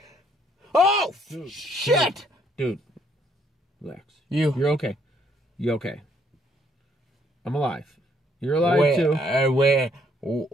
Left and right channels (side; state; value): both; normal; correlation 0.68